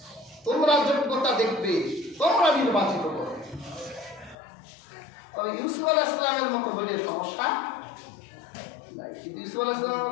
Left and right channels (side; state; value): right; drops out; at 4.4 s